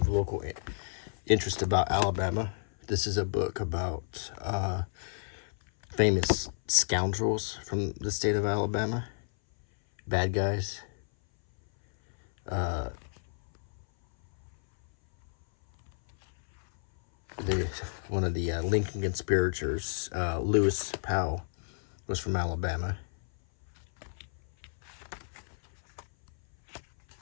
local interest about Alabama. This is a book about famous scoundrels from the state of Alabama. Bad guys. One of the Lincoln conspirators, Lewis Powell, was from Alabama.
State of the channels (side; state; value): right; silent; 57 dB below the other